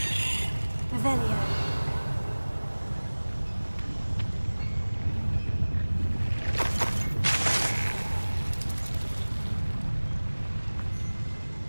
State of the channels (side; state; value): both; inverted; correlation -1.00